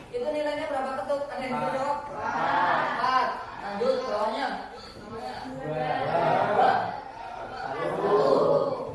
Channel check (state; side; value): identical; both; correlation 1.00